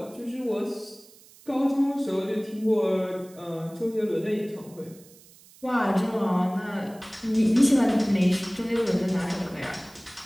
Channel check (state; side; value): noise; right; hiss, 24 dB below the sound